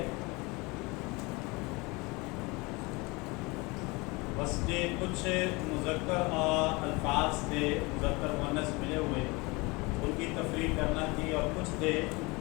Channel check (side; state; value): right; quieter; 25.4 dB